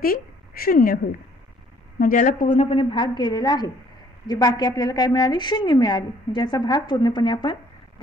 0 होईल. म्हणजे याला पूर्णपणे भाग गेलेला आहे. जे बाकी आपल्याला काय मिळाली, 0 मिळाली. म्हणजे याचा भाग पूर्णपणे आपण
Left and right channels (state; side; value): normal; both; correlation 0.61